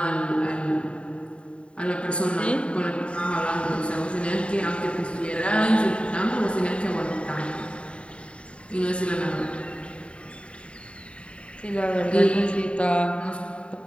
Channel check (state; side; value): late; right; 0.058 ms